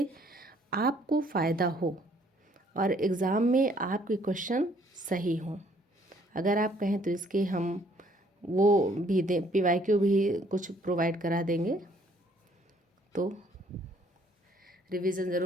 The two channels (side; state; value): both; normal; correlation 0.63